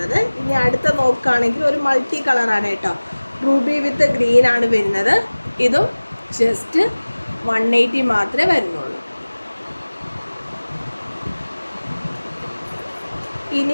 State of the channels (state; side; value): inverted; both; correlation -1.00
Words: ഇനി അടുത്ത നോക്കുകയാണെങ്കിൽ ഒരു മൾട്ടി കളറാണ് കേട്ടോ, റൂബി വിത്ത് ഗ്രീൻ ആണ് വരുന്നത്. ഇതും ജസ്റ്റ് 180 മാത്രമേ വരുന്നുള്ളൂ.